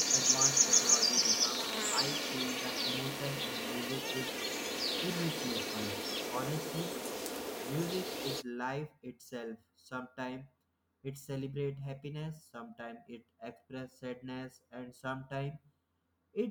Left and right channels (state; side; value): identical; both; correlation 1.00